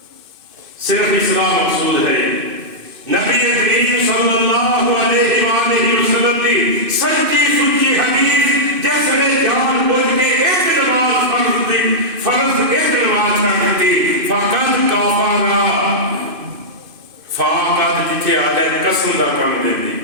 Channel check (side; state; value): left; late; 2.6 ms